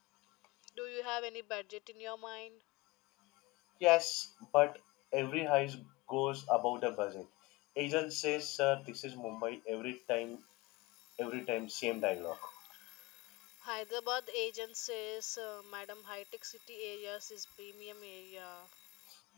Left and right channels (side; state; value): right; quieter; 22.5 dB